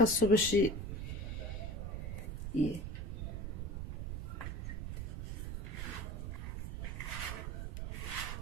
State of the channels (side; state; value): right; noise; rumble, 3 dB below the sound